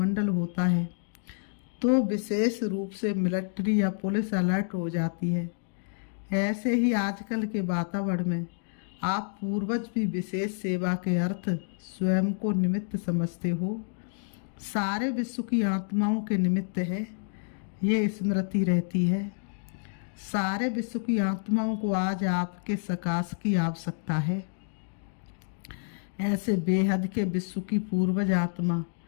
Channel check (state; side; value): silent; right; digital silence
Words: होता है तो विशेष रूप से मिलिट्री या पुलिस अलर्ट हो जाती है, ऐसे ही आजकल के वातावरण में आप पूर्वज भी विशेष सेवा के अर्थ स्वयं को निमित्त समझते हो। सारे विश्व की आत्माओं के निमित्त है, ये स्मृति रहती है। सारे विश्व की आत्माओं को आज आपके सकाश की आवश्यकता है। ऐसे बेहद के विश्व की पूर्वज आत्मा